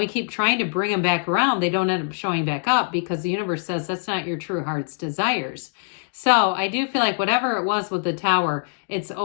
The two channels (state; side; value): silent; right; digital silence